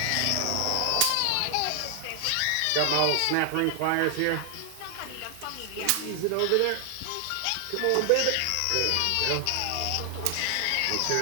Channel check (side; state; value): both; different; correlation 0.00